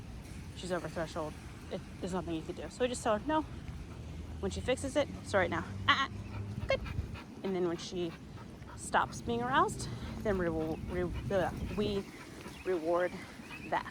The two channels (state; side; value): identical; both; correlation 1.00